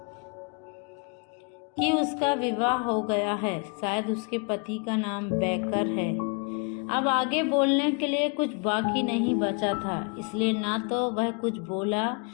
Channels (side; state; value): right; quieter; 34.6 dB